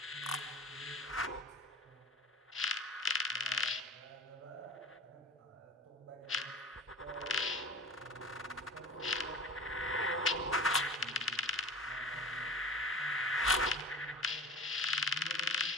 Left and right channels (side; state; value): both; normal; correlation 0.38